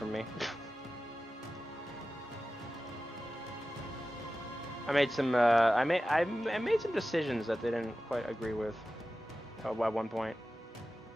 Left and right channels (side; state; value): both; normal; correlation 0.94